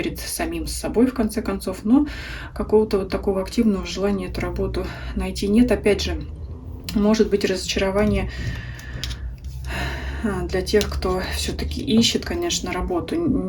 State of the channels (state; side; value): identical; both; correlation 1.00